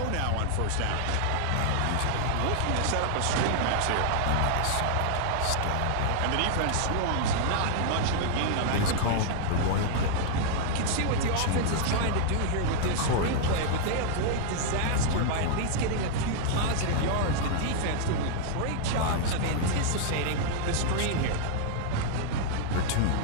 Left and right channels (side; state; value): both; different; correlation -0.01